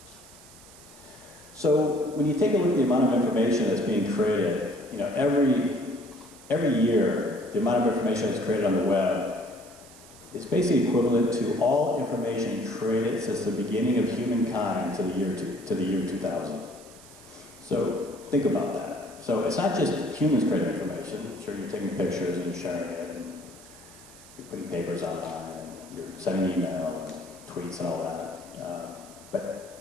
So when you take a look at the amount of information that's being created, every year, the amount of information that's created on the web is basically equivalent to all information created since the beginning of humankind to the year 2000. So think about that. So it's not just humans creating information. Sure, you're taking pictures and you're sharing it, and you're putting papers online, and you're sending email and tweets and all that.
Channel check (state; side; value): noise; right; hiss, 21 dB below the sound